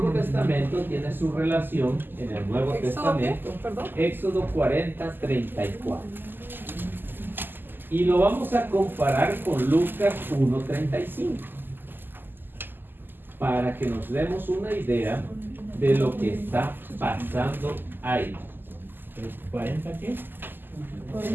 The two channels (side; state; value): left; late; 0.093 ms